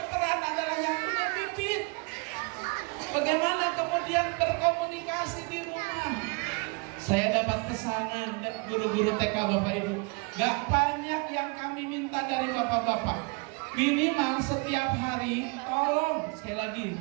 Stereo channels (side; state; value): left; quieter; 31.8 dB